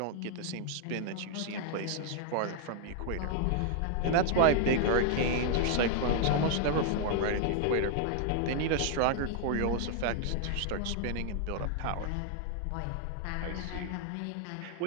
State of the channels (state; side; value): different; both; correlation 0.00